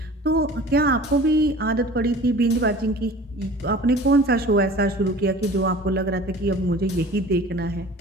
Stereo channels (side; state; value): both; normal; correlation 0.43